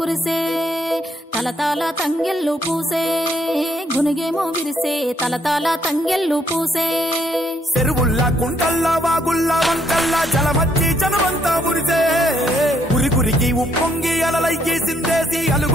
తలతాల తంగెల్లు పూసే గునుగేమో విరిసే తలతాల తంగెల్లు పూసే చెరువుల్లా కుంటల్లా వాగుల్లా వంకల్లా జలమచ్చి జనమంతా మురిసే ఉరికురికి ఉప్పొంగి అలలయ్యి సిందేసి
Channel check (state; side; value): normal; both; correlation 0.71